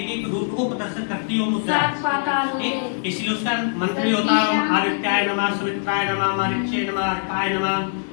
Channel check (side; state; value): right; silent; 64 dB below the other